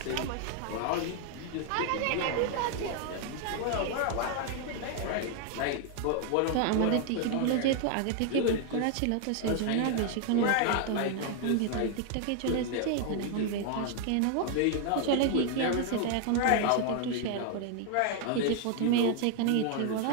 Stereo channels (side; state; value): both; different; correlation 0.00